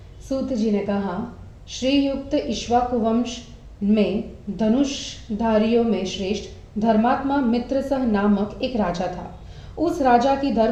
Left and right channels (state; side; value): identical; both; correlation 1.00